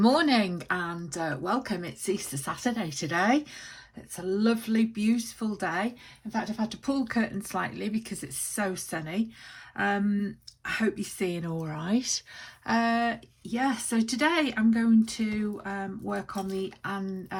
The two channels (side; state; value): both; identical; correlation 1.00